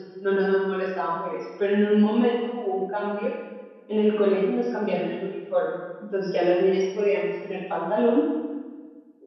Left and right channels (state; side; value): identical; both; correlation 1.00